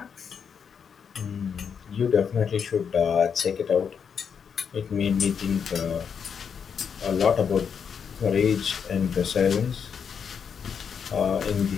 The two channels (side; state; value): right; quieter; 6.9 dB